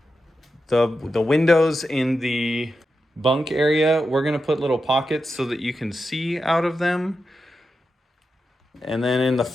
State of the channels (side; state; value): both; normal; correlation 0.89